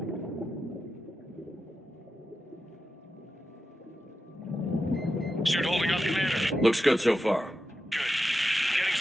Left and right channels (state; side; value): normal; both; correlation 0.90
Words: Suit holding up, Commander. Looks good so far. Good. Getting